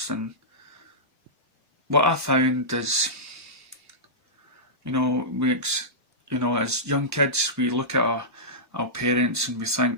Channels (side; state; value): both; normal; correlation -0.15